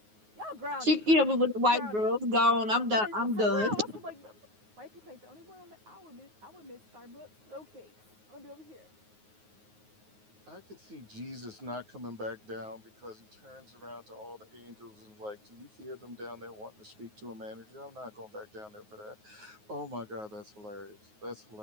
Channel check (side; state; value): left; late; 9.4 ms